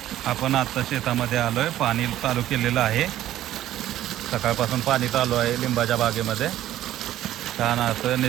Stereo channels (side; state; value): left; quieter; 13.2 dB